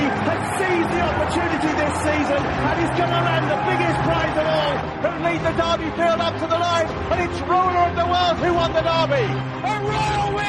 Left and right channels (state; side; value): identical; both; correlation 1.00